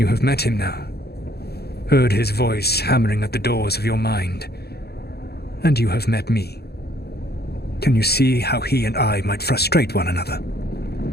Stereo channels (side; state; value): right; late; 0.47 ms